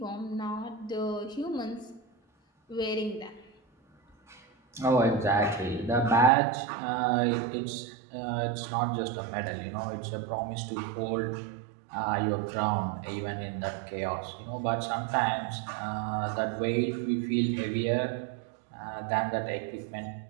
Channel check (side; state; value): left; drops out; at 6.3 s